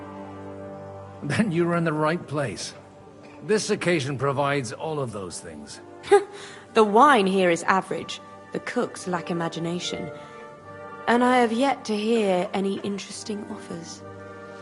Then you're in the right place. This occasion provides all of those things. The wine here is average. The cooks lack imagination. And I have yet to hear any interesting offers.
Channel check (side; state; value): both; identical; correlation 1.00